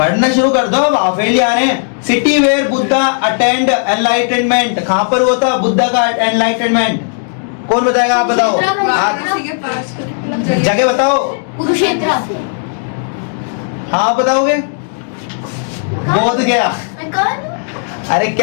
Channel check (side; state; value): right; silent; digital silence